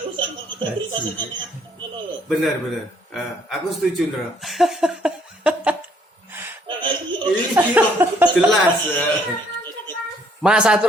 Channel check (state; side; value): normal; both; correlation 0.65